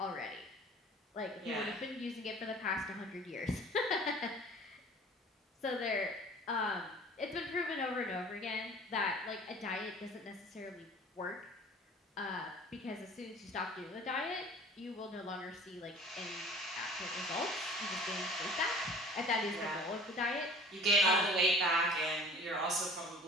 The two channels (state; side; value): normal; both; correlation 0.45